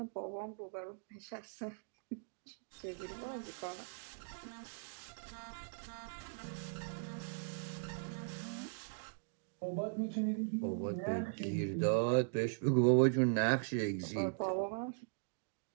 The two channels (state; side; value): silent; left; digital silence